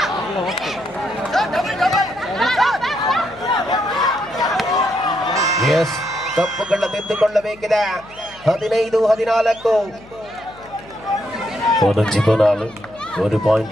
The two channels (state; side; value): noise; left; hum, 23 dB below the sound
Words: ಎಸ್, ತಪ್ಪುಗಳ ತಿದ್ದುಕೊಳ್ಳಬೇಕಿದೆ. 15-14 1